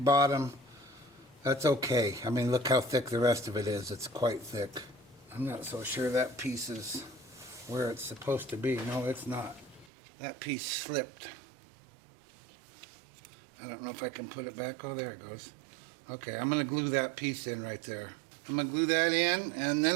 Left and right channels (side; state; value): left; drops out; at 9.9 s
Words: bottom. That's okay. I mean, look how thick the rest of it is. It's quite thick. I'm not so sure that piece is where it's supposed to be. No, it's not. That piece slipped. I don't know if I can put it back. Oh, there it goes. Okay, I'm going to glue that piece in right there. I'm going to glue that in, and then